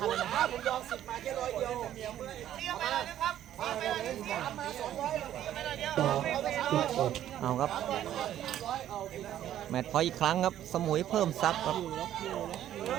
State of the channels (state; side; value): quieter; left; 11.7 dB